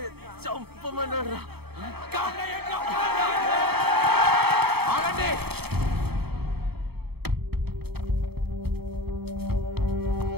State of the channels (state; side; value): late; left; 0.96 ms